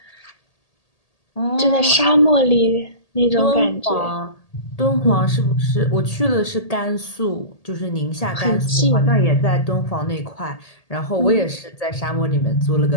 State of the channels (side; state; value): right; late; 1.8 ms